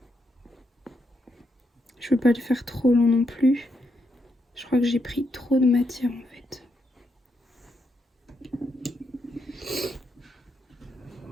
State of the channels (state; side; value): normal; both; correlation 0.80